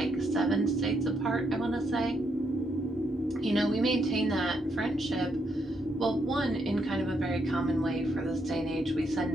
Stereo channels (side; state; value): both; normal; correlation 0.77